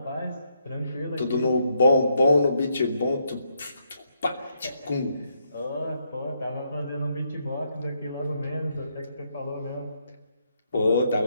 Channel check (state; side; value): inverted; both; correlation -0.76